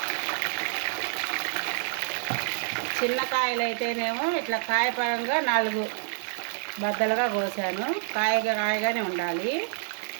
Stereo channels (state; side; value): silent; left; digital silence